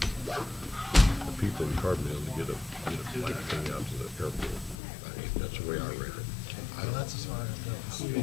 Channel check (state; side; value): drops out; right; at 4.8 s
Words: people in Carbondale to get a bike thing out to the airport. I mean, that's the way I read it. That's as far as it goes.